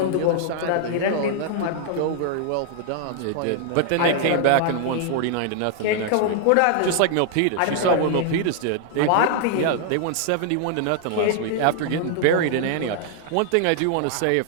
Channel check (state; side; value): different; both; correlation 0.00